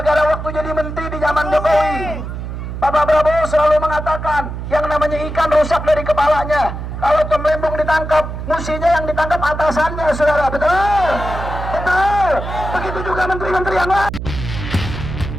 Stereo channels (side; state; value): right; noise; hum, 7 dB below the sound